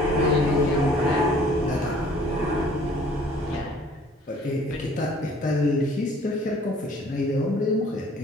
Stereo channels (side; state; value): both; normal; correlation 0.55